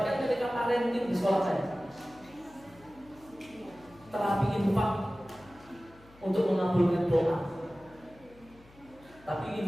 ketika parenting di sekolah saya. Terapi infak untuk mengabulkan doa, tapi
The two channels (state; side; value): noise; left; hum, 25 dB below the sound